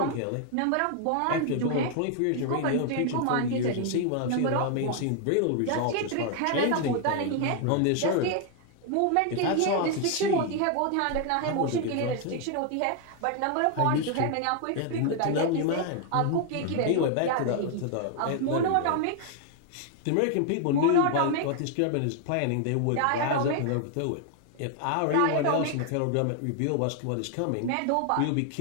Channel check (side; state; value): both; different; correlation 0.00